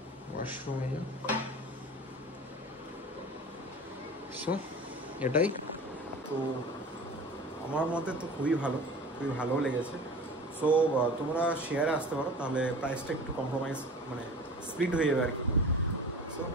ওয়াশরুম। সো এটাই তো, আমার মতে তো খুবই ভালো লেগেছে। সো তোমরা শেয়ারে আসতে পারো, তাহলে প্রাইসটা একটু কম্প্রোমাইজ মানে স্প্লিট হয়ে যাবে আর কি। সো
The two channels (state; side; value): normal; both; correlation 0.38